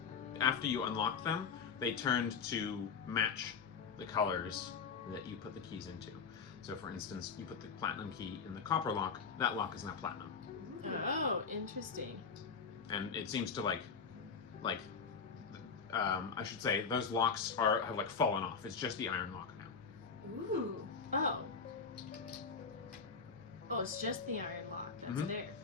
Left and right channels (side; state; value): right; quieter; 5.6 dB